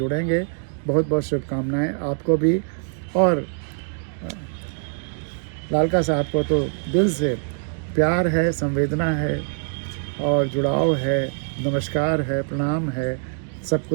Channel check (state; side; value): silent; left; digital silence